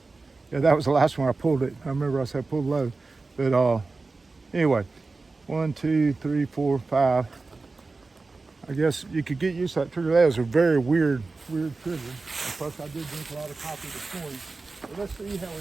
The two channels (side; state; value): left; quieter; 3.8 dB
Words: yeah, that was the last one I pulled it. I remember I said pull low, but anyway, 1, 2, 3, 4, 5. I guess you could get used to that trigger. That was a very weird trigger. And plus I did drink a lot of coffee this morning. But let's see how we